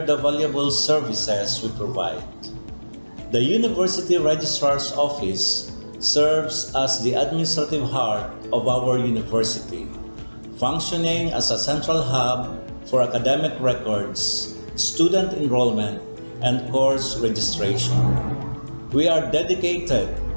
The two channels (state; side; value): inverted; both; correlation -1.00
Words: the valuable services we provide. The University Registrar's Office serves as the administrative heart of our university, functioning as a central hub for academic records, student enrollment, and course registration. We are dedicated